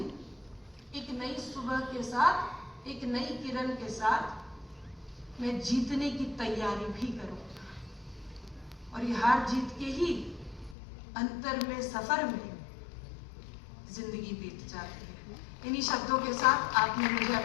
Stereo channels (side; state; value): right; drops out; at 10.8 s